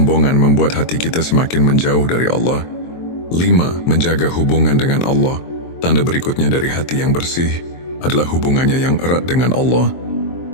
membuat hati kita semakin menjauh dari Allah. 5. Menjaga hubungan dengan Allah. Tanda berikutnya dari hati yang bersih adalah hubungannya yang erat dengan Allah.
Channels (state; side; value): late; right; 23 ms